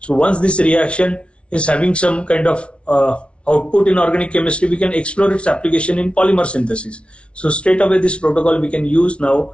once this reaction is having some kind of output in organic chemistry, we can explore its application in polymer synthesis. So straight away this protocol we can use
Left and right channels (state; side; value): late; right; 0.060 ms